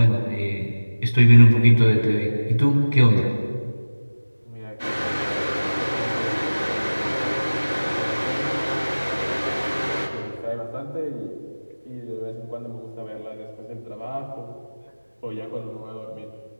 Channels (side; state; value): both; inverted; correlation -1.00